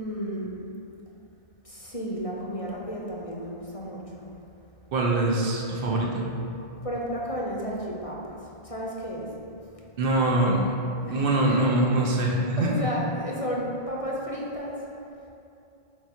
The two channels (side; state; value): right; late; 1.6 ms